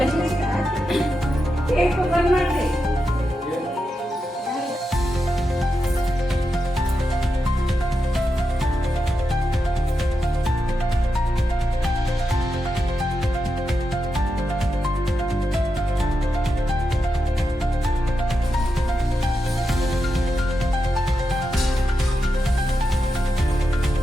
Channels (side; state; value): both; normal; correlation 0.87